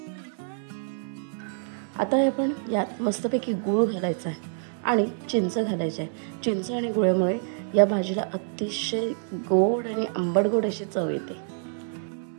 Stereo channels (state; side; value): silent; left; 60 dB below the other